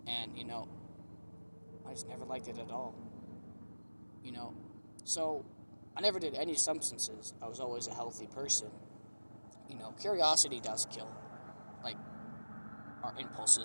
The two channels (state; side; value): inverted; both; correlation -1.00